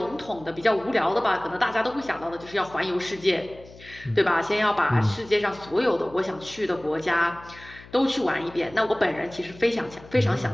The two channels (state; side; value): noise; left; hum, 20 dB below the sound